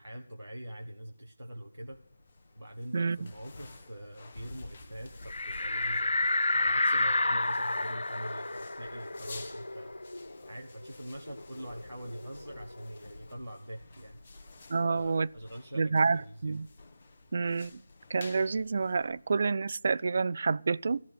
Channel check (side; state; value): both; inverted; correlation -0.88